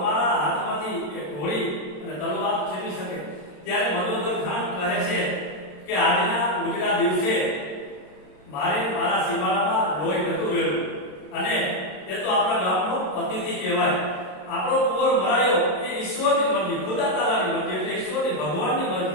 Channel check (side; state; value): right; late; 27 ms